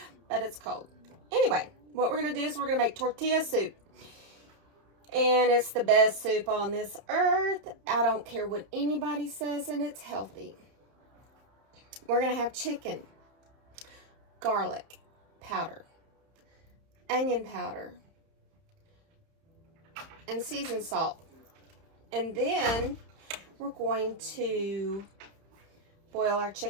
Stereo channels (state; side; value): late; left; 31 ms